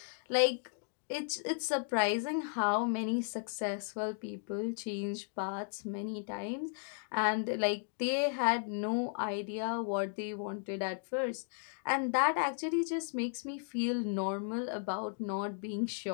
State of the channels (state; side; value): silent; right; digital silence